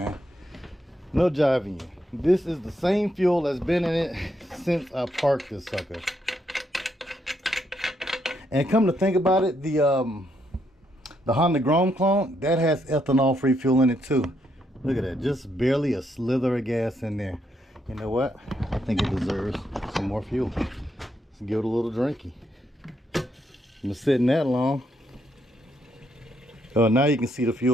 No jiving you. This is the same fuel that's been in it since I parked this sucker. And come to think about it, the Honda Grom clone, that has ethanol-free fuel in it too. Look at that, just barely a slither of gas in there. You know what? I think it deserves some more fuel. Let's give it a little drinky. Been sitting that long. Oh, now you can see the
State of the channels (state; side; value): normal; both; correlation 0.77